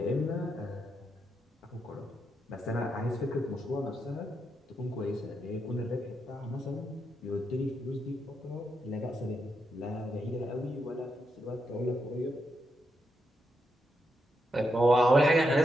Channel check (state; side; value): normal; both; correlation 0.82